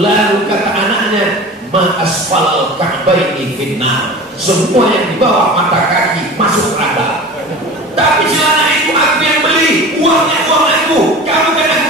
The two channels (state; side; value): normal; both; correlation 0.36